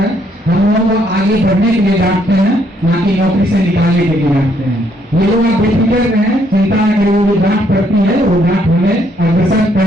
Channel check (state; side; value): normal; both; correlation 0.70